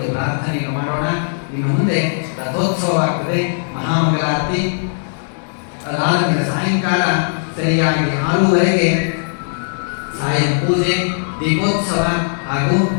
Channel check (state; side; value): silent; right; digital silence